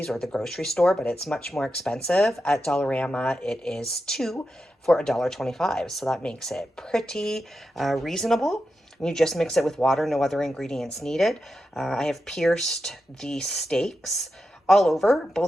or the grocery store, but it's much more expensive. At Dollarama, it is 2 for $1.25, so that makes it pretty reasonable. You just mix it with water, no other ingredients needed. I have pierced the steaks all over,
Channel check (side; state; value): both; normal; correlation 0.89